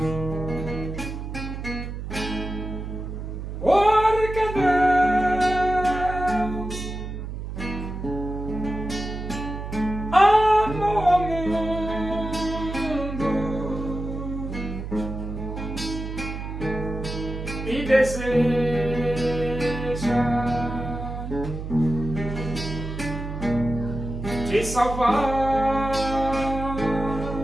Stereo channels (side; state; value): right; noise; hum, 7 dB below the sound